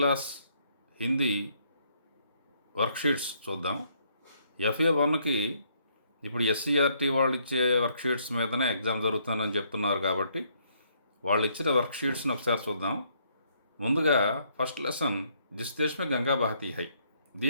Hindi worksheets చూద్దాం. FA1కి ఇప్పుడు SCRT వాళ్ళు ఇచ్చే వర్క్షీట్స్ మీదనే ఎగ్జామ్ జరుగుతుందని చెప్తున్నారు కాబట్టి వాళ్ళు ఇచ్చిన వర్క్షీట్స్ని ఒకసారి చూద్దాం. ముందుగా ఫస్ట్ లెసన్ జిస్ దేశ్ మే గంగా బహతీ హై.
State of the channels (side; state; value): both; inverted; correlation -0.69